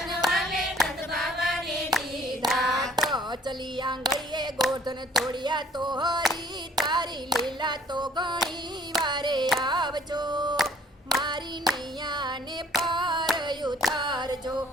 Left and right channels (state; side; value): normal; both; correlation 0.58